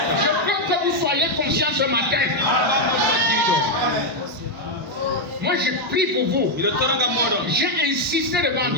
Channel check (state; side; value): normal; both; correlation 0.02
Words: Je veux que vous soyez conscients ce matin. Moi, je prie pour vous. J'ai insisté devant